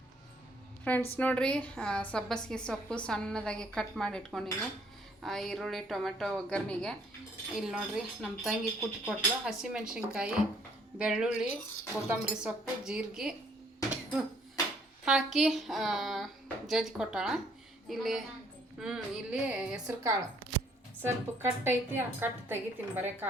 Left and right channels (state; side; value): normal; both; correlation 0.64